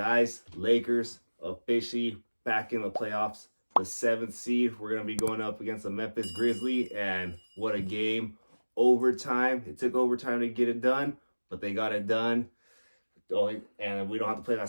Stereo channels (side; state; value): both; inverted; correlation -1.00